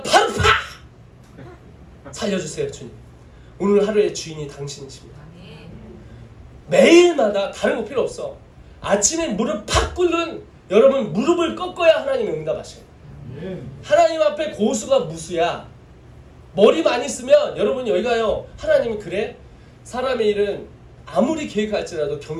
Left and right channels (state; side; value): identical; both; correlation 1.00